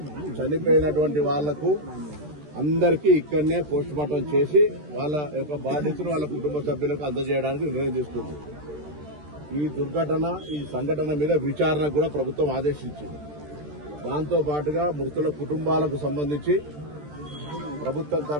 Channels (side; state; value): left; late; 13 ms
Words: చనిపోయినటువంటి వాళ్లకు అందరికీ ఇక్కడనే పోస్ట్ మార్టం చేసి వాళ్ళ యొక్క బాధ్యతను వాళ్ళ కుటుంబ సభ్యులకు అందజేయడానికి నిర్ణయం తీసుకుంది. ఈ దుర్ఘటన ఈ సంఘటన మీద విచారణ కూడా ప్రభుత్వం ఆదేశించింది. దాంతో పాటుగా మృతుల కుటుంబాలకు సంబంధించి ప్రభుత్వం